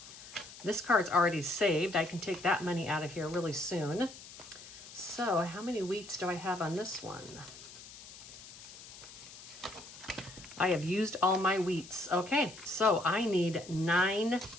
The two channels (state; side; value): noise; left; hiss, 16 dB below the sound